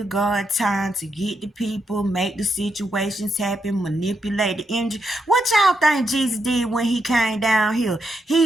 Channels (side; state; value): both; normal; correlation 0.82